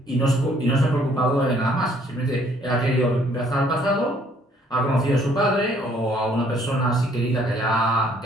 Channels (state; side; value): normal; both; correlation 0.63